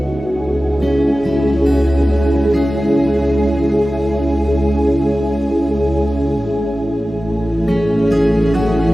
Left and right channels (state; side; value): normal; both; correlation 0.96